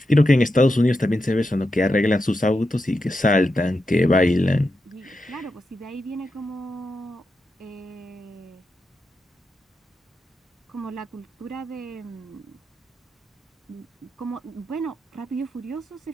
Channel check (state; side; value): normal; both; correlation 0.87